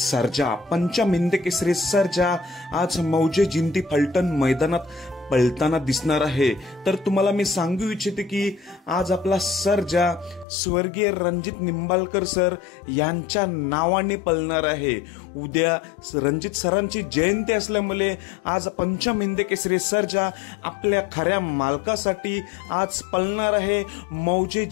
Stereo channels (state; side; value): drops out; right; at 10.5 s